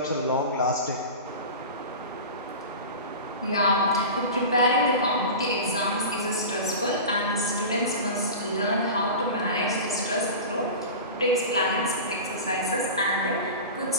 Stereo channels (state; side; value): inverted; both; correlation -0.30